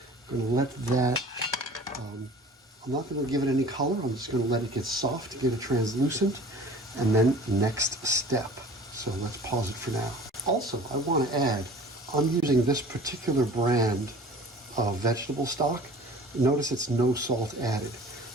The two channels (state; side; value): normal; both; correlation 0.45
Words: I'm going to let that, I'm not going to give it any color. I'm just going to let it get soft, get it translucent, and then next step. So let's pause it for now. Also, I want to add, I'm using this particular brand of vegetable stock. Notice it's no salt added,